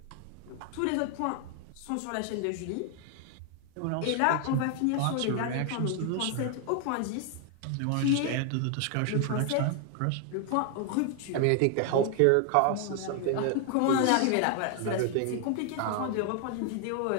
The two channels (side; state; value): both; different; correlation 0.00